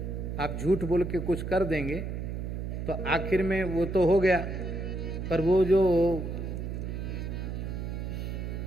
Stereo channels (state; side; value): noise; right; hum, 4 dB below the sound